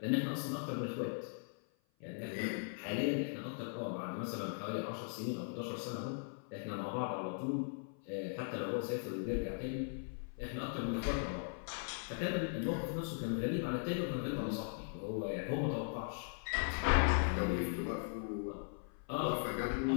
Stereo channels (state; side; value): silent; right; 52 dB below the other